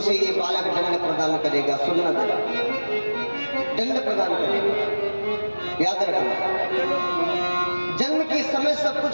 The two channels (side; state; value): both; inverted; correlation -1.00